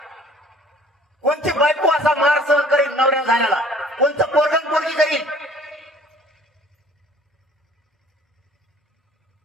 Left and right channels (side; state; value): both; normal; correlation 0.52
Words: कोणती बायको असा मार सहन करील नवऱ्या झाल्याला? कोणतं पोरगण पोरगी करील?